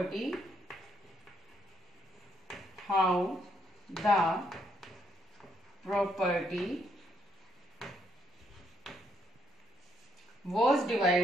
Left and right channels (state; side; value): normal; both; correlation 0.74